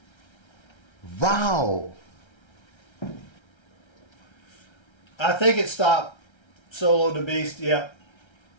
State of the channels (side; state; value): right; late; 1.3 ms